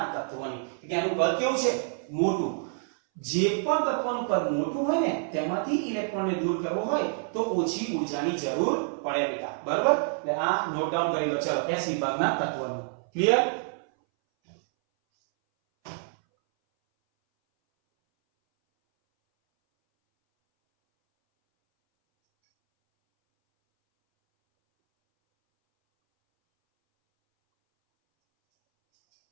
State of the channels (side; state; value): left; silent; 60 dB below the other